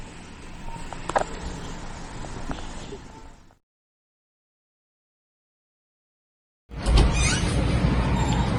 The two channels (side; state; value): both; identical; correlation 1.00